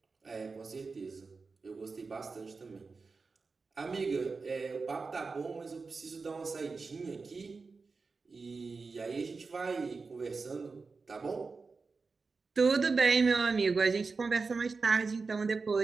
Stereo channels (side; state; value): left; quieter; 4.4 dB